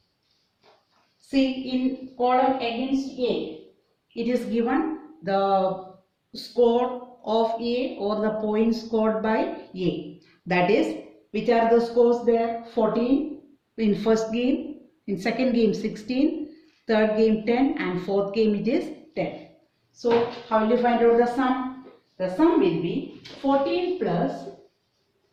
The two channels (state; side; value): identical; both; correlation 1.00